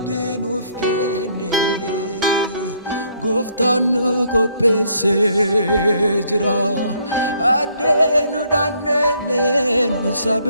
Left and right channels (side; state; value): both; inverted; correlation -0.67